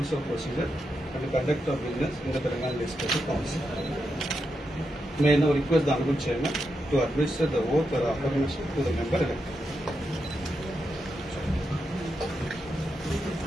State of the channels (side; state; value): both; normal; correlation 0.85